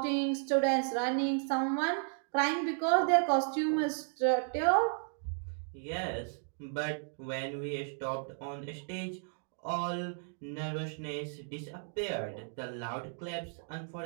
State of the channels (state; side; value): silent; left; 55 dB below the other